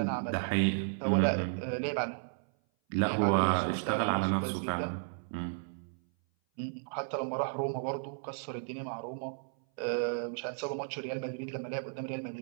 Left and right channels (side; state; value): left; silent; 55 dB below the other